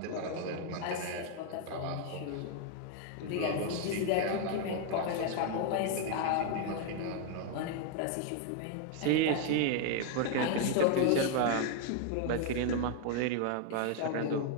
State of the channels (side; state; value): both; different; correlation 0.00